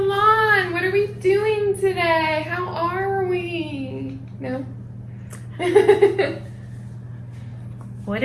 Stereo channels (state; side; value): identical; both; correlation 1.00